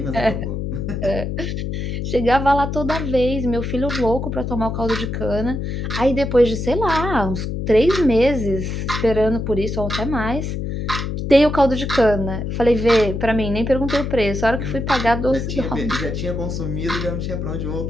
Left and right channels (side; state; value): left; noise; hum, 3 dB below the sound